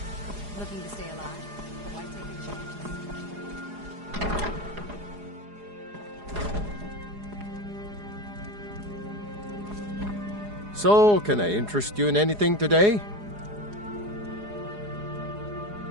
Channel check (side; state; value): left; late; 4.8 ms